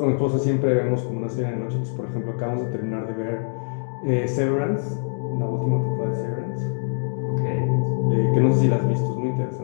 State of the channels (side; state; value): right; silent; digital silence